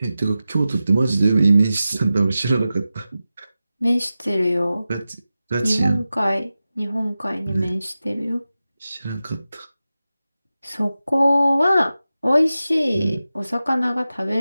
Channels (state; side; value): inverted; both; correlation -0.94